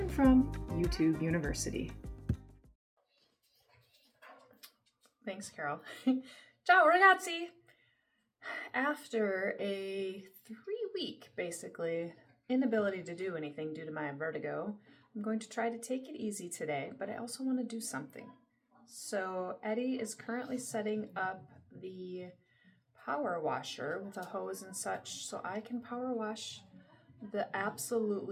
from YouTube University. Thanks, Carol. Ciao, ragazzi! After a 3-week, basically, inability to do anything due to my vertigo, I'm going to try to take it easy today, but I also want to do something. So Eddie is currently setting up the power washer with a hose and such so I can power wash the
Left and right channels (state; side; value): identical; both; correlation 1.00